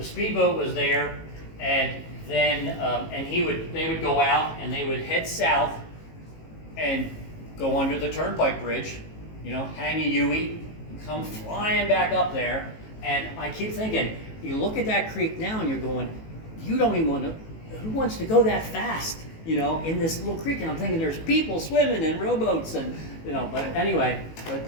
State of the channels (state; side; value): late; right; 18 ms